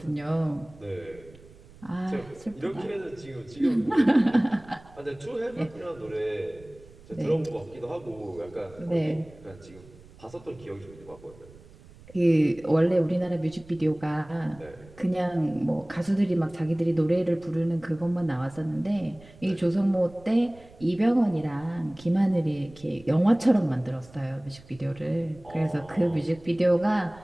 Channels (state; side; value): noise; right; rumble, 22 dB below the sound